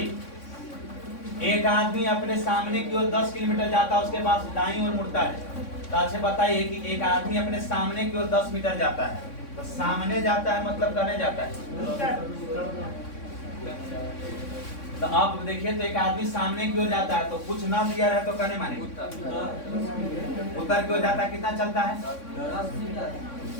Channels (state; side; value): late; right; 3.6 ms